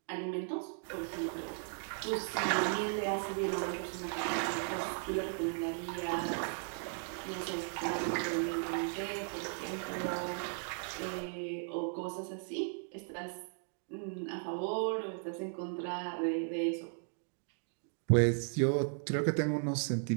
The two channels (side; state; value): left; silent; 53 dB below the other